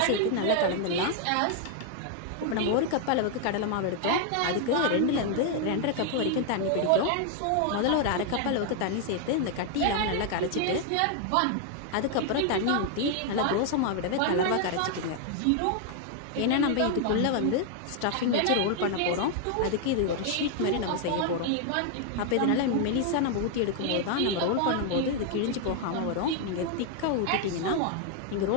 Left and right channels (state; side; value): different; both; correlation 0.00